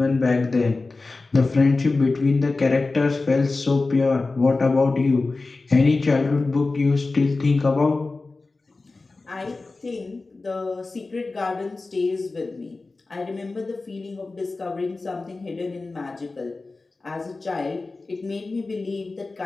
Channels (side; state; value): right; quieter; 3.6 dB